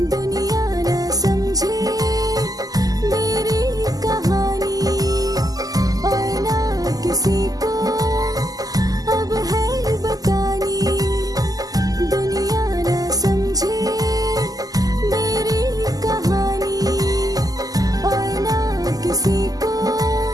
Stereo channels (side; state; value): left; late; 0.17 ms